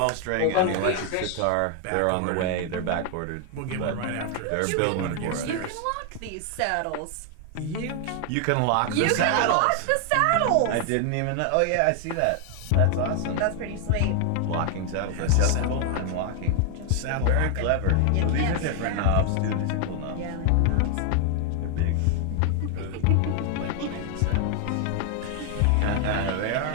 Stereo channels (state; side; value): different; both; correlation 0.00